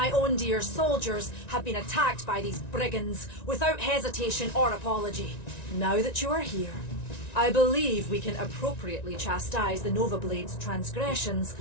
own dear soldiers have been attacked by these brigands without hesitation or apology. Now that you are here, I believe we can appropriately chastise the Nova Blades' transgressions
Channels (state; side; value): late; right; 1.9 ms